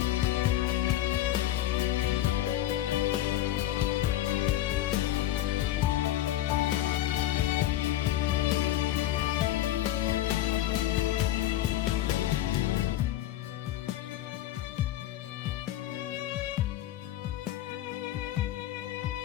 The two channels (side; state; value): right; quieter; 13.4 dB